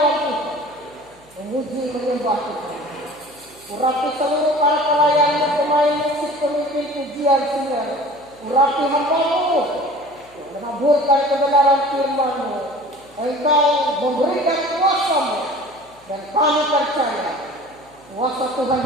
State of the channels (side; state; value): left; noise; hum, 30 dB below the sound